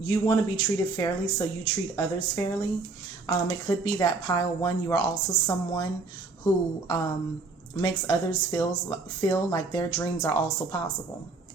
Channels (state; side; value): quieter; left; 3.8 dB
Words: treated fairly, so you treat others fairly. It could be that pile one, you are also someone who makes others feel like their dreams are also possible.